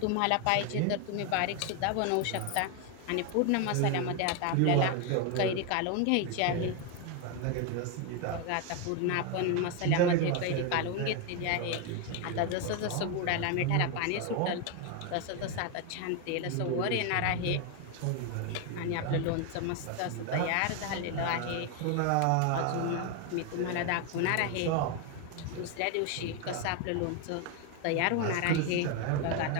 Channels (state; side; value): different; both; correlation 0.01